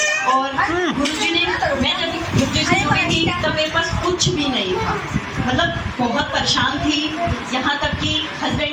और गुरु जी ने, मैं जब गुरु जी से जुड़ी थी तब मेरे पास कुछ भी नहीं था, मतलब बहुत परेशान थी, यहाँ तक कि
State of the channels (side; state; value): both; identical; correlation 1.00